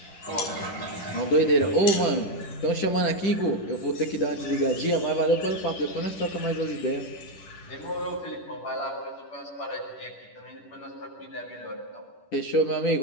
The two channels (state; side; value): late; right; 10 ms